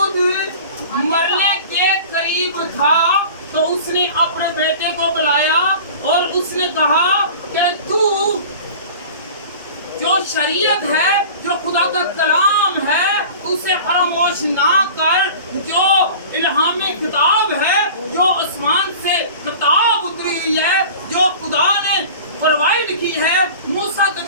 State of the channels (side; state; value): both; inverted; correlation -0.40